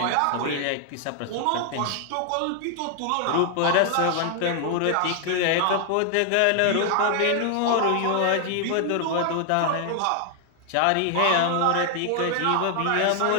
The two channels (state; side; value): different; both; correlation 0.00